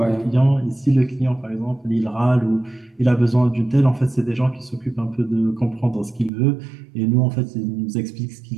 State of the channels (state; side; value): drops out; left; at 6.3 s